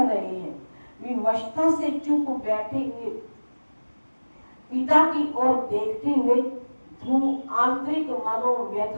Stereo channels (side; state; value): both; inverted; correlation -1.00